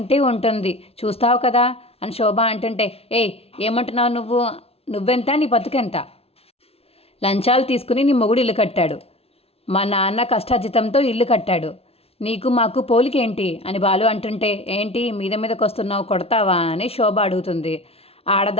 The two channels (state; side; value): late; right; 0.29 ms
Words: ఉంటుంది, చూస్తావు కదా అని శోభ అంటుంటే, ఏమంటున్నావు నువ్వు? నువ్వెంత, నీ బతుకెంత? లంచాలు తీసుకుని నీ మొగుడు ఇల్లు కట్టాడు. మా నాన్న కష్టార్జితంతో ఇల్లు కట్టాడు. నీకు మాకు పోలికేంటి అని బాలు అంటుంటే, ఏంటి మీదకి వస్తున్నావు, కొడతావా అని శోభ అడుగుతుంది.